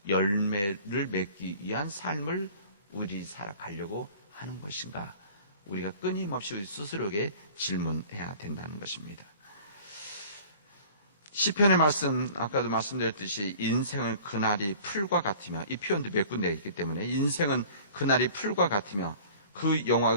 열매를 맺기 위한 삶을 우리 살아가려고 하는 것인가? 우리가 끊임없이 우리 스스로에게 질문해야 된다는 것입니다. 시편의 말씀, 아까도 말씀드렸듯이 인생은 그날이 풀과 같으며, 이 표현도 몇 군데 있기 때문에 인생은 그날이 풀과 같으며 그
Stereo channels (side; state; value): both; inverted; correlation -0.46